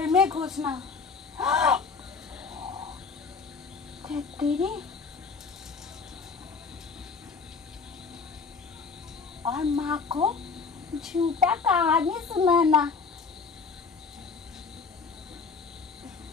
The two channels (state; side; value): quieter; right; 4.8 dB